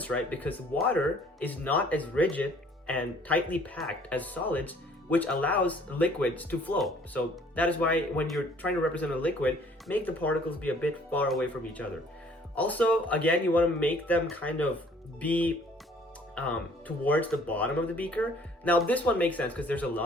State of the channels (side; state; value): both; normal; correlation 0.57